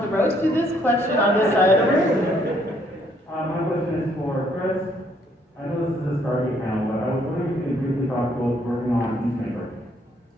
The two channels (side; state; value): both; normal; correlation 0.67